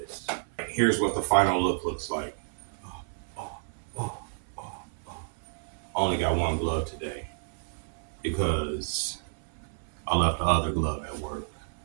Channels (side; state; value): left; silent; 58 dB below the other